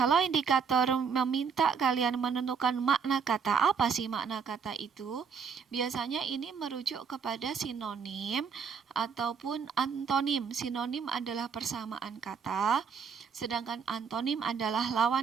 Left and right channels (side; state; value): left; quieter; 6.2 dB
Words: indikator meminta kalian menentukan makna kata, apa sih makna kata itu? Biasanya ini merujuk kepada sinonim ataupun antonim. Sinonim adalah persamaan kata, sedangkan antonim adalah